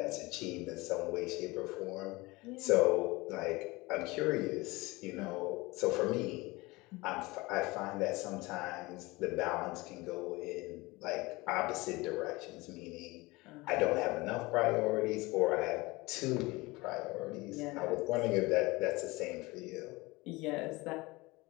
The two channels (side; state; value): right; quieter; 22.6 dB